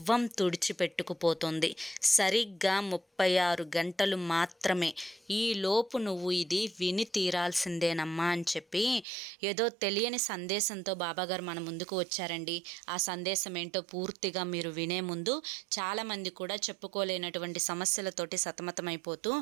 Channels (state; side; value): drops out; left; at 9.1 s